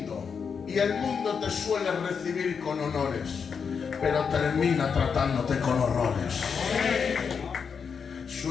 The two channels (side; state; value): right; quieter; 6.2 dB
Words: y el mundo te suele recibir con honores, pero termina tratándote con horrores.